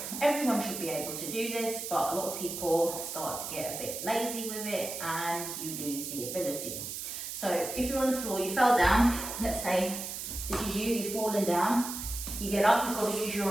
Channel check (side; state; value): right; noise; hiss, 6 dB below the sound